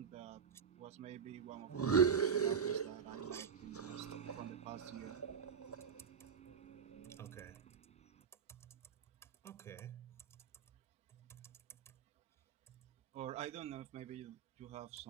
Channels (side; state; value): left; quieter; 6.8 dB